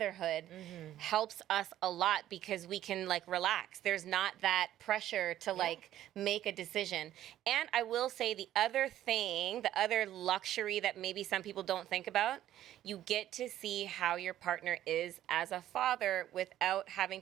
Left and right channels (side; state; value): left; quieter; 12.7 dB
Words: helps us a lot because we can like relax. There's not that pressure to like make a decision. And I will say the other thing, the other luxury that maybe some people don't think about, you get to see how your partner is as a father without having